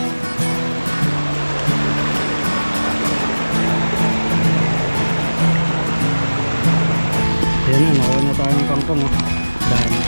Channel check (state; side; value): inverted; both; correlation -1.00